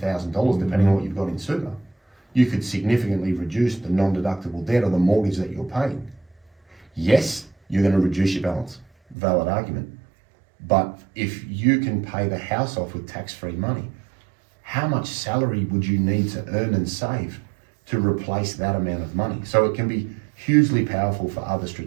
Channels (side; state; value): left; drops out; at 9.2 s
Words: depending on what you've got in super. You could significantly reduce the non-deductible debt or the mortgage that you're paying. Yes, you're going to reduce your balance, valid argument. But if you can pay the house off with tax-free money, how much salary would you need to earn and save to replace that amount of money? So it can be hugely powerful for other